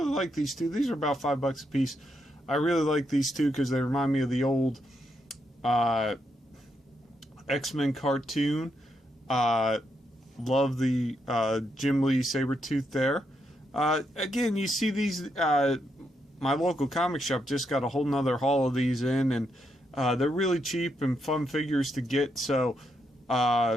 like these two. These are about $5 a piece. I really like these two because they remind me of the old X-Men cartoon. Love the Jim Lee Sabretooth there. Again, you see these, my local comic shop just got a whole nother haul of these in, and they're really cheap and fun figures to get, so,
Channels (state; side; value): normal; both; correlation 0.80